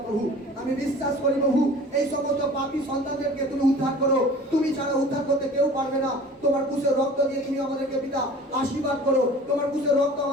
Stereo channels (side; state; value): both; normal; correlation 0.44